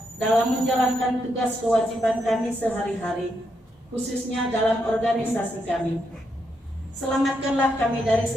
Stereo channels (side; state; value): both; normal; correlation 0.80